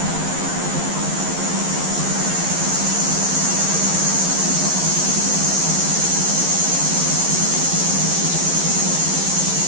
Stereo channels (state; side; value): late; left; 11 ms